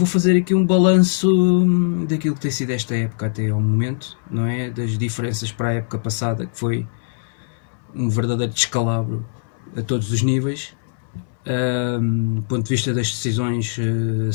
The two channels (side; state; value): right; silent; 65 dB below the other